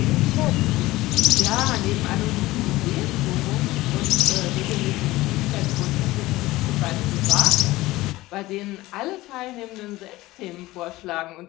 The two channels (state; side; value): quieter; right; 18.4 dB